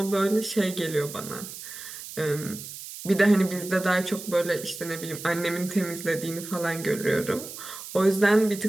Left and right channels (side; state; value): right; noise; hiss, 12 dB below the sound